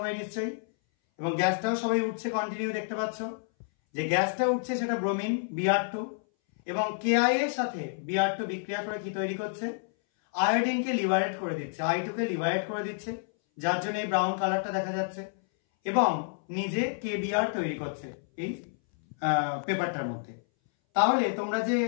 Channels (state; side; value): silent; right; 58 dB below the other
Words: নিশ্চয়ই? এবং গ্যাসটাও সবাই উঠছে কন্টিনিউ। দেখতে পাচ্ছ যে গ্যাসটা উঠছে সেটা ব্রোমিন Br2 এবং KI এর সাথে Br2 বিক্রিয়া করে কি তৈরি করছে? আয়োডিনকে লিবারেট করে দিচ্ছে, I2 কে লিবারেট করে দিচ্ছে, যার জন্য এই ব্রাউন কালারটা দেখা যাচ্ছে এবং নিজে KBr তৈরি করছে এই পেপারটার মধ্যে। তাহলে তোমরা যে